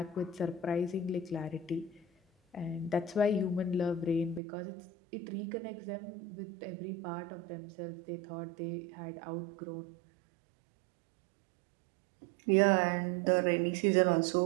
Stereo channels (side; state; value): left; drops out; at 4.4 s